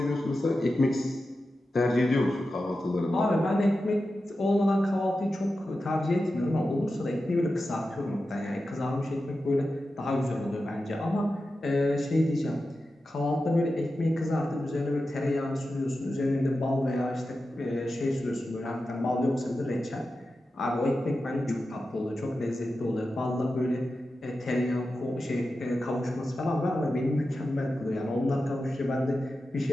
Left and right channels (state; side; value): normal; both; correlation 0.92